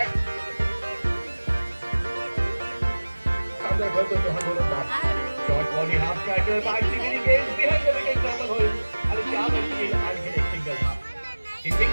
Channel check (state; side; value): inverted; both; correlation -1.00